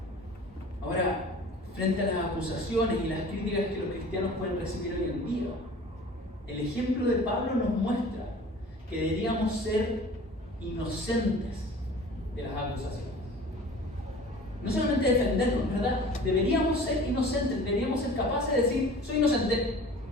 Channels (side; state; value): both; normal; correlation 0.43